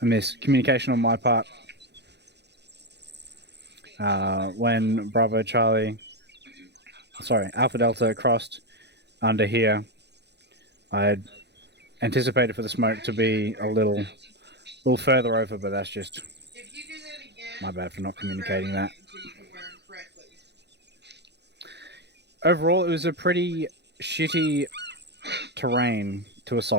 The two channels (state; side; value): late; left; 0.50 ms